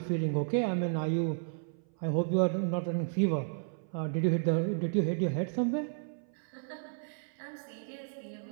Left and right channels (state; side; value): silent; left; 55 dB below the other